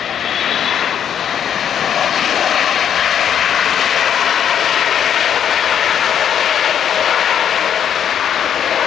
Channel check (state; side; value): quieter; right; 8.9 dB